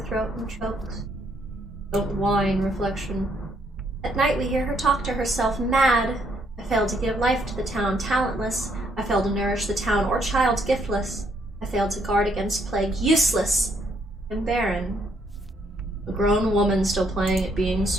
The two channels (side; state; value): both; normal; correlation 0.71